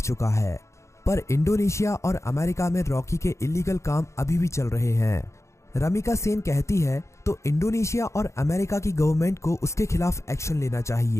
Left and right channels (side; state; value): right; late; 0.14 ms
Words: चुका है। पर इंडोनेशिया और अमेरिका में रॉकी के इलीगल काम अभी भी चल रहे हैं। रमिका सेन कहती है तो इंडोनेशिया और अमेरिका की गवर्नमेंट को उसके खिलाफ एक्शन लेना